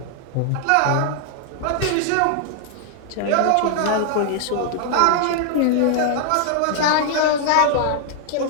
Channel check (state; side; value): different; both; correlation 0.00